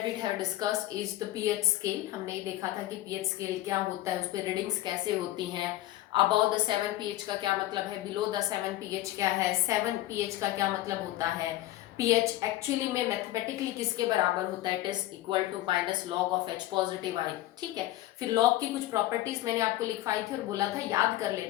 we have discussed is the pH scale. हमने ये देखा था कि पीएच स्केल क्या होता है, उस पर रीडिंग्स कैसे होती हैं, अबाउ द 7 पीएच का क्या मतलब है, बिलो द 7 पीएच क्या है, 7 पीएच का क्या मतलब होता है, पीएच एक्चुअली में मैथमेटिकली किसके बराबर होता है, it is equal to minus log of H positive I. ठीक है, फिर लॉग की कुछ प्रॉपर्टीज मैंने आपको लिखवाई थी और बोला था याद कर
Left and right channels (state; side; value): quieter; right; 15.4 dB